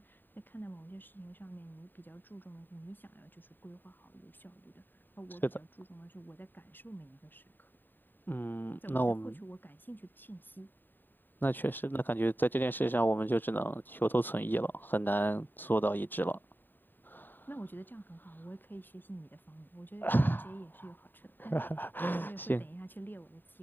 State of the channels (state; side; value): late; right; 0.092 ms